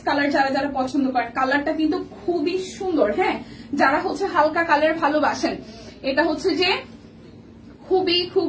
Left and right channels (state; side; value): identical; both; correlation 1.00